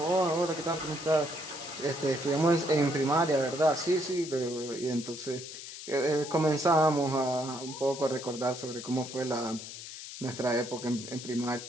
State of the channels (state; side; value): noise; left; hiss, 11 dB below the sound